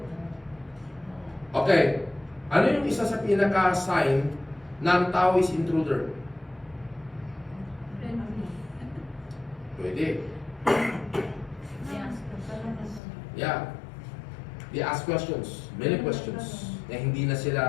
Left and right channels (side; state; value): right; drops out; at 13.0 s